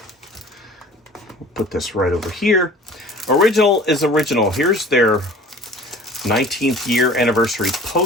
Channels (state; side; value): normal; both; correlation 0.46